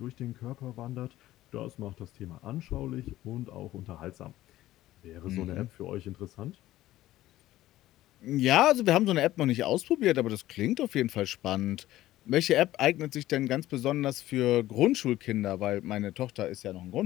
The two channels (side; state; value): right; quieter; 15.2 dB